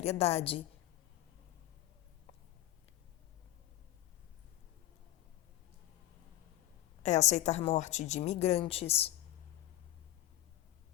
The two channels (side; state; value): right; quieter; 14.4 dB